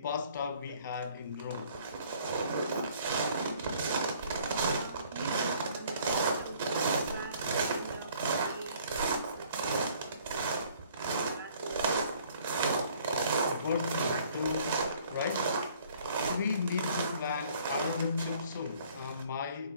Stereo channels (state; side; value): inverted; both; correlation -0.57